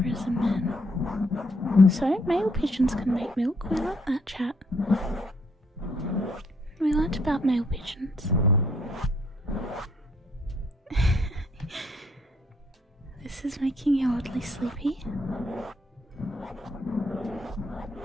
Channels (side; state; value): both; normal; correlation 0.69